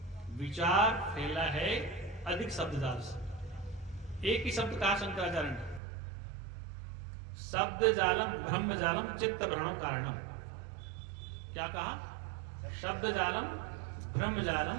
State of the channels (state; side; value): drops out; left; at 5.8 s